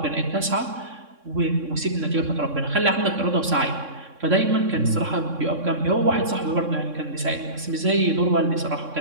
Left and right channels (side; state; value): left; late; 3.6 ms